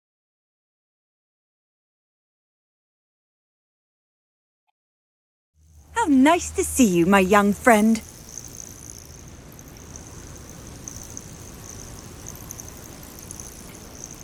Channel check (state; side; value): identical; both; correlation 1.00